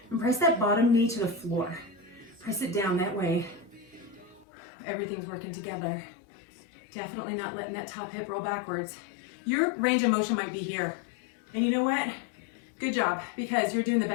And press that bottom knee to the floor. Press it down that way. Everything's working together. Definitely not letting that top hip roll backwards. Your range of motion might be here. And you know what? Good job, because you're doing the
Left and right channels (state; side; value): drops out; right; at 4.5 s